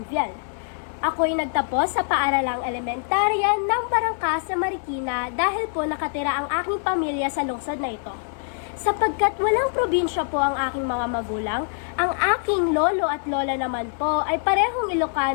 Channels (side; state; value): right; silent; digital silence